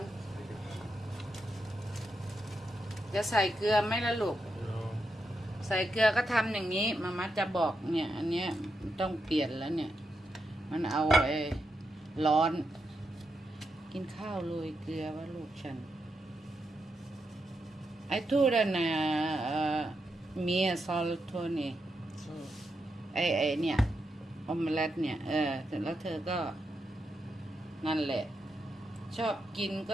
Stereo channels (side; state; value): both; normal; correlation 0.84